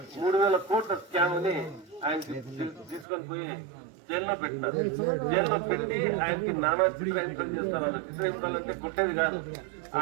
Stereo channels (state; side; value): drops out; left; at 3.1 s